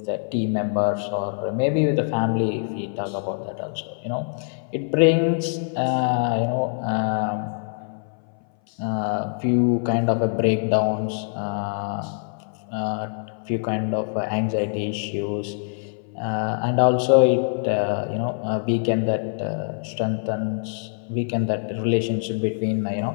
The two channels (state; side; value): silent; right; 59 dB below the other